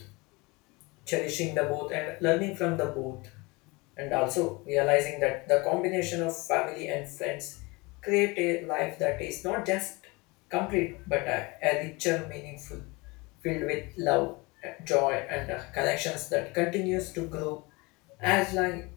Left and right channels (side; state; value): right; quieter; 25.4 dB